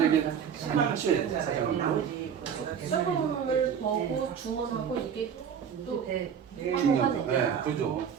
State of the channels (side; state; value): left; quieter; 7.8 dB